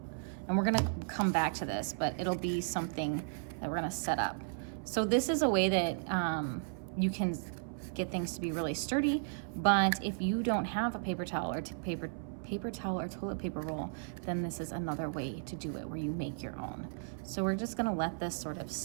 And we're gonna come back to this, but it'll be something that we're gonna set up. So this is a way that you can get things to be really sturdy, but if you don't have a paper towel or paper towel or toilet paper roll, then this is another way to do it where you make your own. So we're just gonna let this sort of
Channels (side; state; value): left; silent; 54 dB below the other